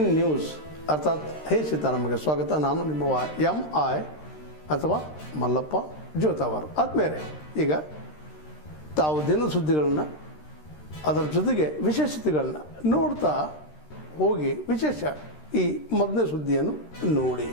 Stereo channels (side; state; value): right; late; 13 ms